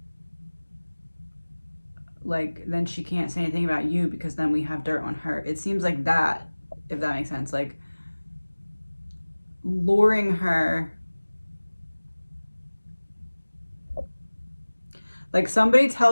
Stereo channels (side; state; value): both; inverted; correlation -1.00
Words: like, then she can't say anything about you because then we have dirt on her. It seems like that, if that makes sense. Like, luring her. Like somebody